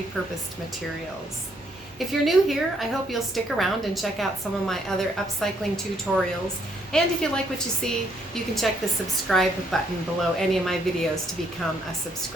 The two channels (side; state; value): both; normal; correlation 0.70